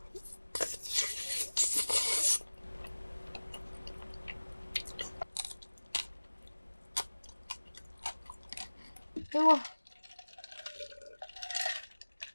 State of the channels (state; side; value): inverted; both; correlation -1.00